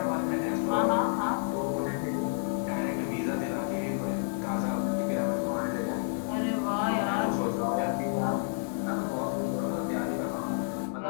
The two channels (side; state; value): right; silent; digital silence